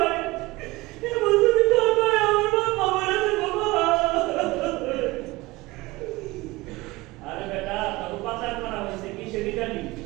এমন যদি তোর ভাই আমার বাপ মারা দেবো ভাই। আরে বেটা, তখন পাচার করা হয়েছে কিসের ইটালি,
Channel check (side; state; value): left; quieter; 21.1 dB